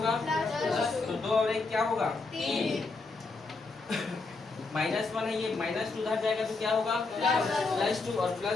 तो 2 और 1 क्या होगा? 3 -1 है, ये -2 उधर जाएगा तो क्या होगा? +2 और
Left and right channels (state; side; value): quieter; right; 3.8 dB